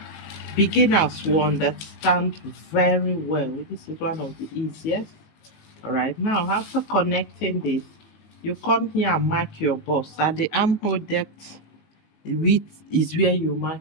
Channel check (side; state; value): right; late; 19 ms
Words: beginners will understand very well. This is one of the easiest. All right, now after connecting this, you come here and mark your bust. At the armhole depth, width is where you